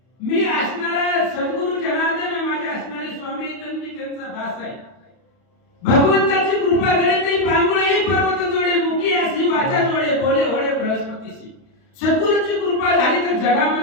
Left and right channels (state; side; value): late; right; 31 ms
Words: मी असणारा सद्गुरु जनार्दन माझे असणारे स्वामी तर मी त्यांचा दास आहे. भगवंताची कृपा घडे ते पांगुळे पर्वत जोडे मुखी अशी वाचा जोडे बोले होडे बृहस्पतीशी. सद्गुरूची कृपा झाली तर